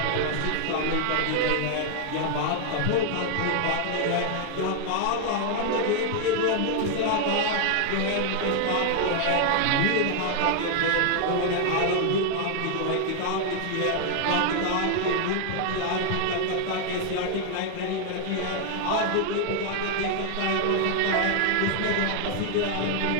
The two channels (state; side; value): different; both; correlation 0.00